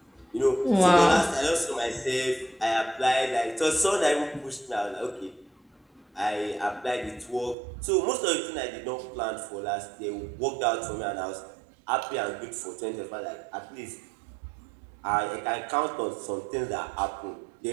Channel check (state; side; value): drops out; left; at 7.6 s